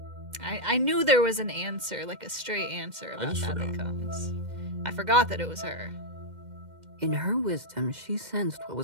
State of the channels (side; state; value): left; late; 2.1 ms